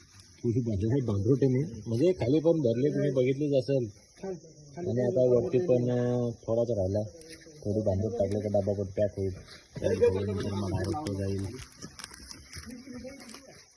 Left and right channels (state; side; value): identical; both; correlation 1.00